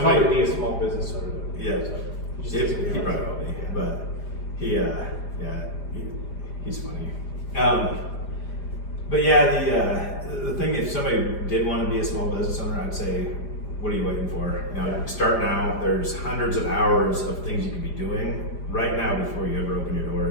probably be a small business owner. yeah, So he probably will be. But he's funny. But yeah, the thing, if somebody did want to be a small business owner, I'd say, what are you waiting for? Start now. There's hundreds of hours of things you could be doing right now before you ever open your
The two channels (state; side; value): late; right; 4.9 ms